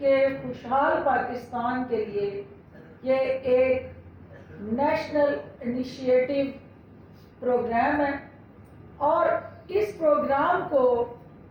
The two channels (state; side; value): identical; both; correlation 1.00